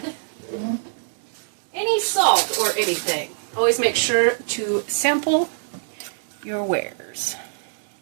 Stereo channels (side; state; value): left; silent; digital silence